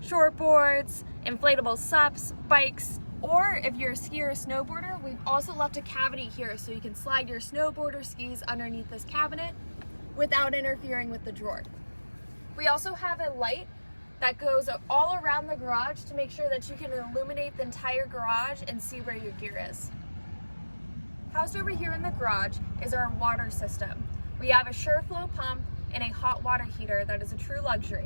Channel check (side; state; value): both; inverted; correlation -1.00